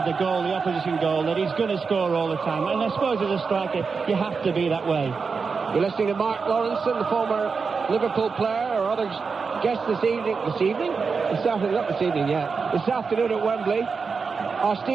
the goal, the opposition goal, that he's going to score all the time. And I suppose as a striker, you have to be that way. You're listening to Mark Lawrenson, the former Liverpool player, or other guest this afternoon at Wembley, are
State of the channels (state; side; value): quieter; left; 5.1 dB